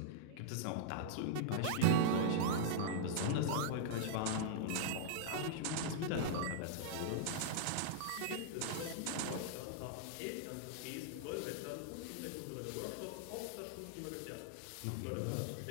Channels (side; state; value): both; different; correlation -0.01